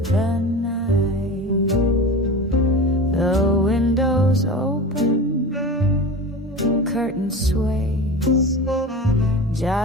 the night. The windows open, curtain sways,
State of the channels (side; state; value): both; normal; correlation 0.31